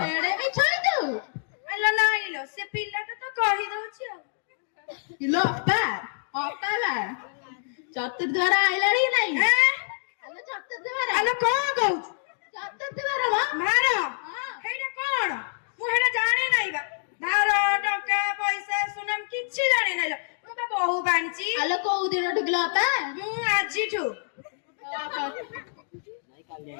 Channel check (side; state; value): right; silent; digital silence